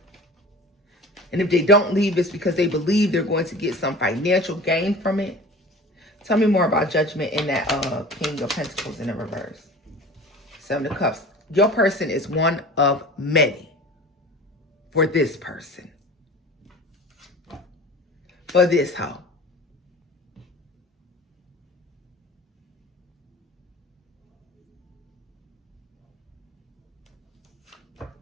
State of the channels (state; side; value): normal; both; correlation 0.39